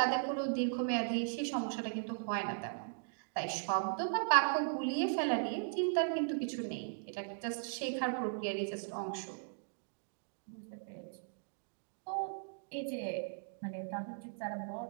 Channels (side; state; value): left; silent; digital silence